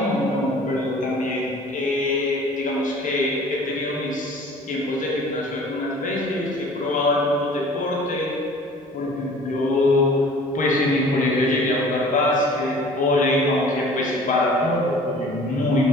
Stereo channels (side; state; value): both; normal; correlation 0.48